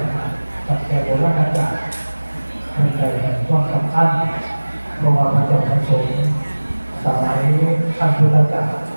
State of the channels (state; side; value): inverted; both; correlation -1.00